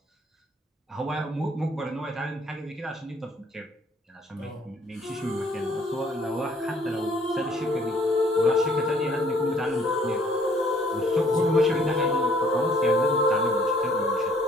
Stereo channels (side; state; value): both; normal; correlation 0.61